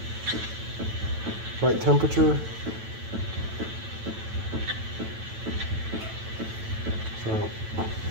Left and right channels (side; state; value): left; late; 9.1 ms